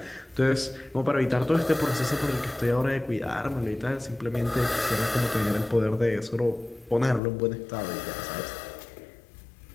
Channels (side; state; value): right; drops out; at 7.2 s